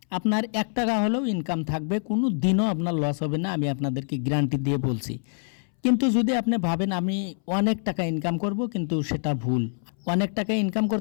আপনার 1 টাকা হলেও ইনকাম থাকবে, কোনো দিনও আপনার লস হবে না, আমি আপনাদেরকে গ্যারান্টি দিয়ে বলছি। কিন্তু যদি আপনি ভাবেন আমি অনেক টাকা ইনকাম করব, কিন্তু সেটা ভুল। অনেক টাকা ইনকাম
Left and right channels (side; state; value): right; silent; 61 dB below the other